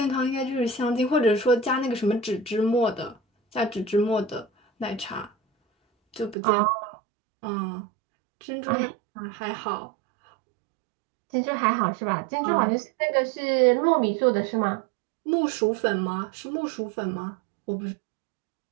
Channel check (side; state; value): left; drops out; at 6.4 s